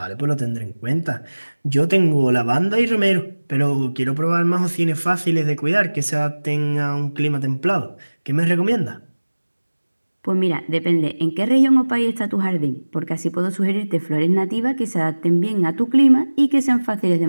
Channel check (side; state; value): both; inverted; correlation -1.00